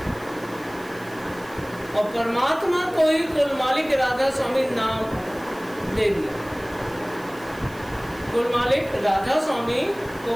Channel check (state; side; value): noise; right; hiss, 22 dB below the sound